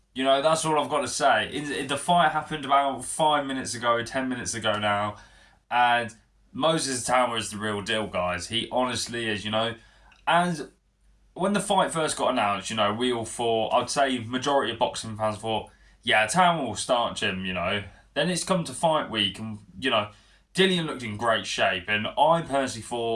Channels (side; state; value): both; identical; correlation 1.00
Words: That's all I've got to say. The fight happened about 5 minutes ago, 10 minutes ago now. And Moses Atama is the real deal, guys. He honestly is. And when the fight first got announced, we all thought, I'd say majority of boxing fans thought, yeah, Atama will start Jim. Then it's come to fight week and, Dillian looked in great shape. And I personally